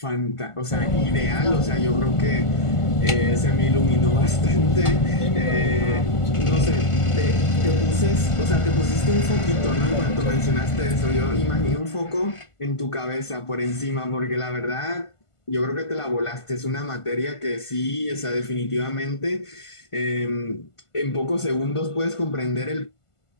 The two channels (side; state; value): right; late; 1.5 ms